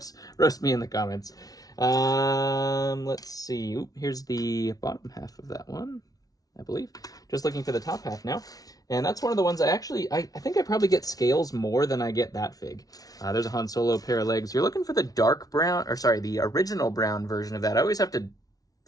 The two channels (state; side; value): late; right; 0.18 ms